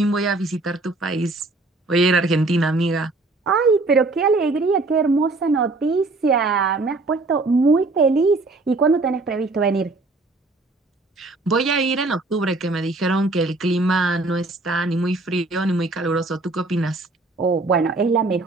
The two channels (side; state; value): left; quieter; 3.2 dB